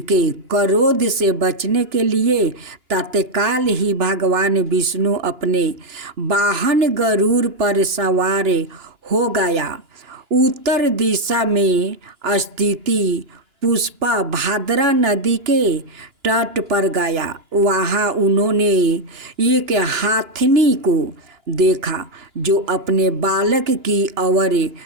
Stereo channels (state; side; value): late; left; 2.9 ms